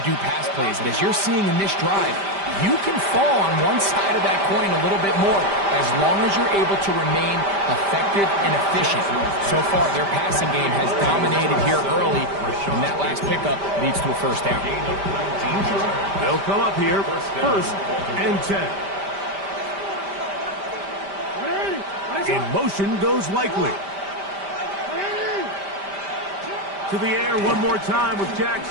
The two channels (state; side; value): late; left; 5.1 ms